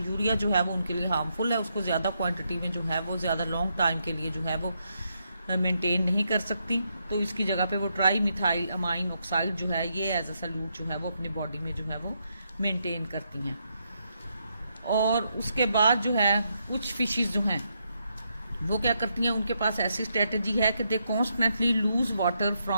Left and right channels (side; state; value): both; inverted; correlation -0.80